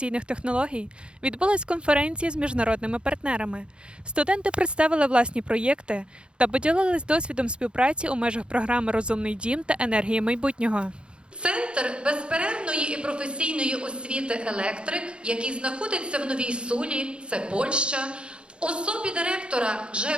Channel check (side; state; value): left; late; 0.055 ms